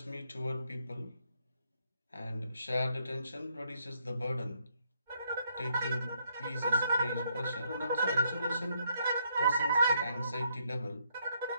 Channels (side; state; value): both; inverted; correlation -0.73